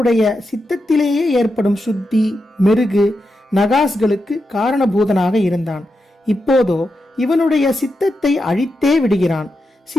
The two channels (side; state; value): both; normal; correlation 0.87